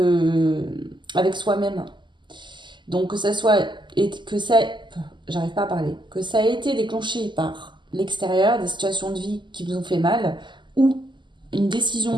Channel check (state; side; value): late; left; 0.22 ms